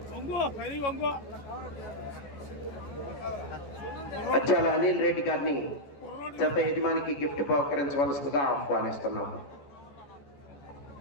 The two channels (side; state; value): right; late; 14 ms